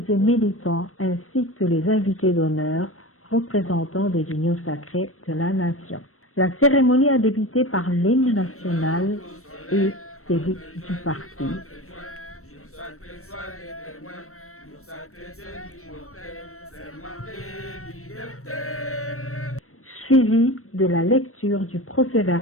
et militants ainsi que les invités d'honneur représentants des unions sacrées de la nation. La cérémonie a débuté par l'hymne national et celui du parti. Suivi de la lecture du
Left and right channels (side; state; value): right; late; 0.63 ms